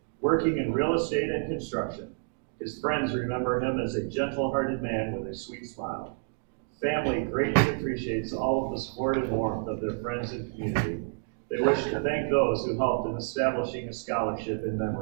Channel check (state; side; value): silent; left; digital silence